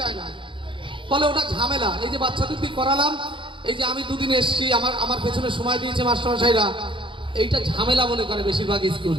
না, ফলে ওটা ঝামেলা। এই যে বাচ্চাদের দিয়ে করালাম, এই যে আমি দুদিন এসছি, আমার পেছনে সময় দিয়েছে মাস্টারমশাইরা, এইটা ঝামেলা মনে করে বেশিরভাগ স্কুল।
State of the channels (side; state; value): left; late; 0.24 ms